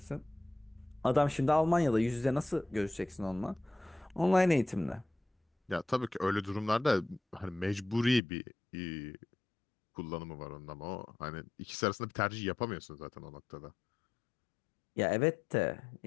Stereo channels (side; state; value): right; drops out; at 8.2 s